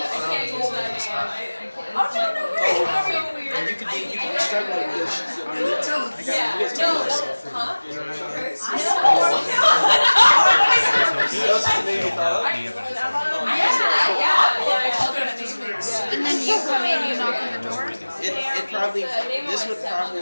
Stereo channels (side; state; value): both; inverted; correlation -1.00